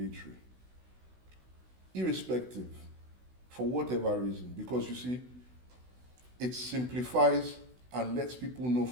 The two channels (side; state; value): left; late; 16 ms